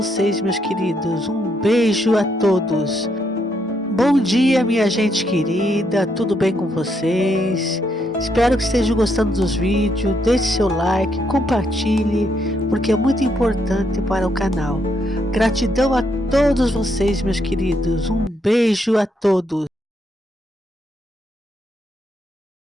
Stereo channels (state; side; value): normal; both; correlation 0.76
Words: meus queridos. Um beijo a todos. Bom dia, minha gente querida, tudo bem com vocês? Espero que estejam gostando dos vídeos. Deixe seu like, compartilhe, porque é muito importante para o canal. Gratidão a todos vocês, meus queridos. Um beijo a todos.